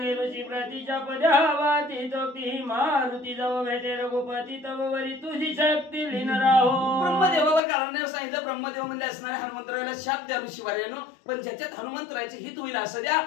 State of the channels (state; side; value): drops out; right; at 7.6 s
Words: ऋषी प्रतीच्या पद्यावाती तोक्ती मारुती जव भेटे रघुपती तव वरी तुझी शक्ती लीन राहो. ब्रह्मदेवावर कारण सांगितलं. ब्रह्मदेव म्हणजे असणारे हनुमंतराला शाप द्या ऋषीवार्यानो, पण ज्याच्यात हनुमंतरायचे हित होईल असं द्या.